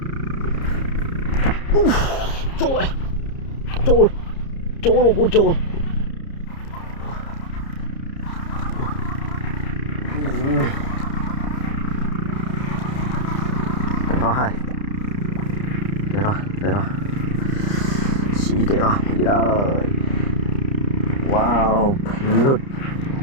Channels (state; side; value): late; right; 30 ms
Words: trôi trôi trôi luôn con trôi để rồi xí để rồi đi rồi wow lụt